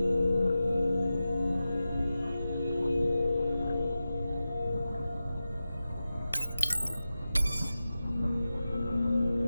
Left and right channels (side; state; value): both; inverted; correlation -0.93